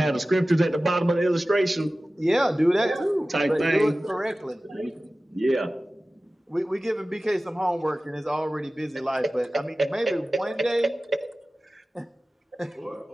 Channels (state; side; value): normal; both; correlation 0.96